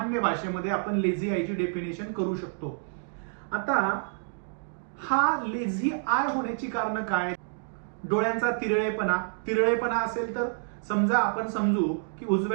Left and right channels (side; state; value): left; silent; digital silence